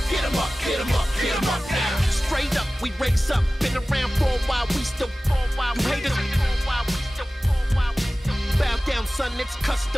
Get 'em up, get 'em up, get 'em up now. Straight up, we raise up. Been around for a while, we still fall while you haters. Bow down, son, it's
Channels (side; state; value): both; normal; correlation 0.97